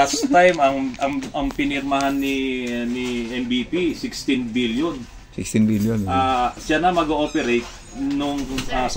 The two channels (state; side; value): identical; both; correlation 1.00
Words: time, ang pinirmahan ni MVP, 16 billion. 16 billion. Siya na mag-ooperate nung